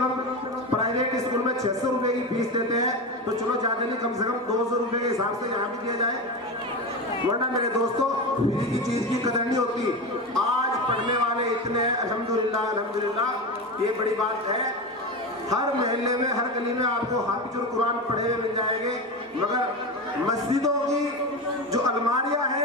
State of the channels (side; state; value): both; normal; correlation 0.22